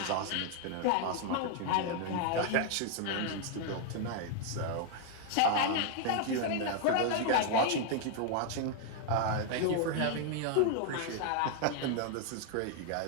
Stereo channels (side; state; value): both; different; correlation 0.00